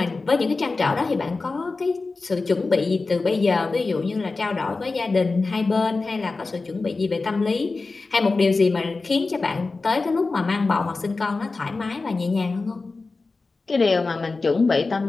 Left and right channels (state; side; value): quieter; right; 3.8 dB